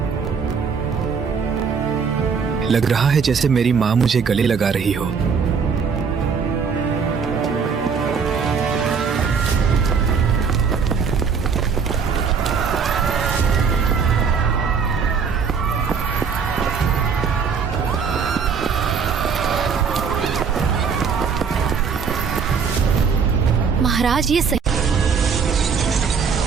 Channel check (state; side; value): quieter; left; 6.0 dB